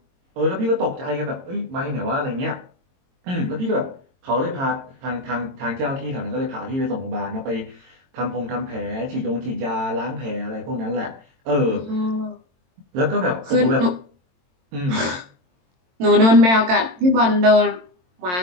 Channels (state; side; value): late; left; 22 ms